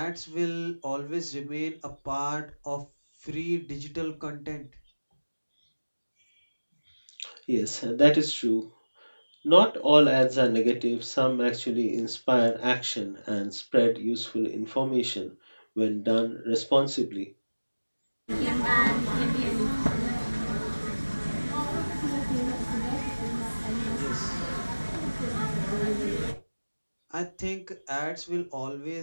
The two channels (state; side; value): inverted; both; correlation -1.00